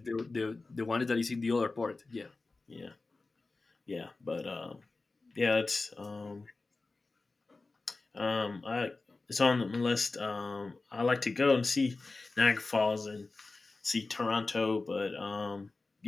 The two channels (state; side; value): quieter; right; 3.6 dB